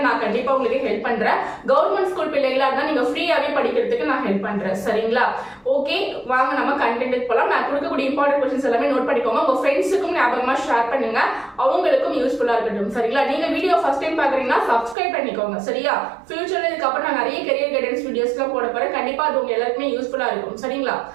நான் கண்டிப்பா உங்களுக்கு ஹெல்ப் பண்றேன். கவர்மெண்ட் ஸ்கூல் பிள்ளைகளா இருந்தா நீங்க ஃப்ரீயாவே படிக்கிறதுக்கு நான் ஹெல்ப் பண்றேன். சரிங்களா? ஓகே, வாங்க நம்ம கண்டென்ட் போலாம். நான் கொடுக்கக்கூடிய இம்பார்ட்டன்ட் क्वेश्चंस எல்லாமே நோட் பண்ணிக்கோங்க. உங்க ஃப்ரெண்ட்ஸுக்கும் ஞாபகமா ஷேர் பண்ணுங்க, அவங்களுக்கும் யூஸ்ஃபுல்லா இருக்கட்டும். சரிங்களா? நீங்க வீடியோ ஃபர்ஸ்ட் டைம் பாக்குறீங்கன்னா சப்ஸ்கிரைப் பண்ணிக்கோங்க. சரியா? ஃபியூச்சர்ல இதுக்கு அப்புறம் நான் நிறைய கரியர் கைடன்ஸ் வீடியோஸ்லாம் போட போறேன். கண்டிப்பா அது உங்க எல்லாருக்குமே யூஸ்ஃபுல்லா இருக்கும். சரிங்களா?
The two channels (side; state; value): left; drops out; at 15.0 s